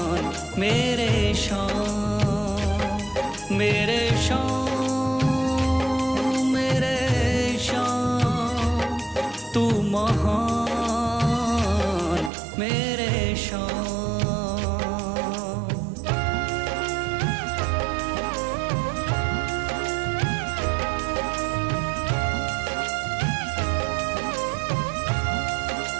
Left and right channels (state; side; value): drops out; left; at 12.3 s